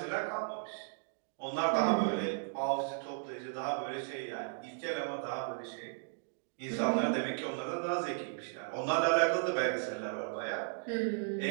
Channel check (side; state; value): left; silent; digital silence